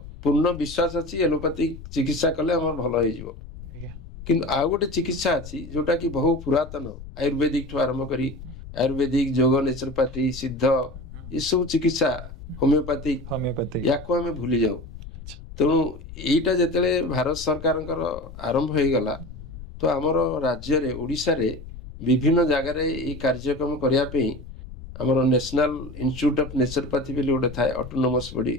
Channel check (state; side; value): noise; left; rumble, 14 dB below the sound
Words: ପୂର୍ଣ୍ଣ ବିଶ୍ୱାସ ଅଛି ଏଲୋପାଥିକ ଚିକିତ୍ସା କଲେ ଆମର ଭଲ ହେଇଯିବ। କିନ୍ତୁ ଆଉ ଗୋଟେ ଚିକିତ୍ସା ଅଛି ଯୋଉଟା କି ବହୁ ପୁରାତନ, ଆୟୁର୍ବେଦିକ ଠୁ ଆରମ୍ଭ କରି ଆୟୁର୍ବେଦିକ, ଯୋଗ, ନେଚୁରୋପାଥି, ସିଦ୍ଧ, ଏସବୁ ଚିକିତ୍ସା, ହୋମିଓପାଥିକ, ୟାକୁ ଆମେ ଭୁଲି ଯାଉ। ତେଣୁ ଏଇଟା ଯେତେବେଳେ ଭାରତ ସରକାରଙ୍କର ଆରମ୍ଭ ହେଇଗଲା, ତ ଆମର ରାଜ୍ୟରେ ଓଡ଼ିଶାରେ ବିଭିନ୍ନ ଜାଗାରେ ଏଇ କାର୍ଯ୍ୟକ୍ରମ କରିବା ପାଇଁ ଆମର ନ୍ୟାସନାଲ ଇନଷ୍ଟିଚ୍ୟୁଟ ଅଫ ନେଚୁରୋପାଥି ବୋଲି ଗୋଟେ ଥାଏ, ଅଟୋନୋମସ୍ ବଡି